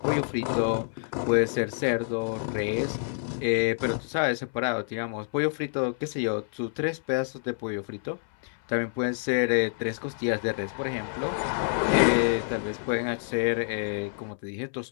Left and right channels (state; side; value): silent; right; 59 dB below the other